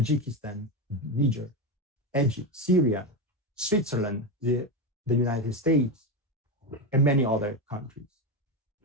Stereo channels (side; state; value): both; normal; correlation 0.13